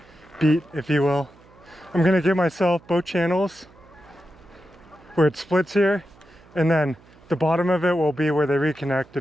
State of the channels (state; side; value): noise; right; hum, 26 dB below the sound